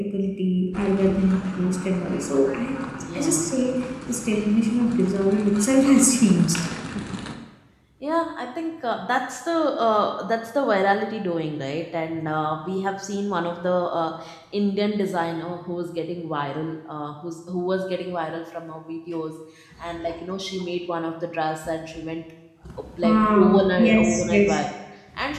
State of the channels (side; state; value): both; identical; correlation 1.00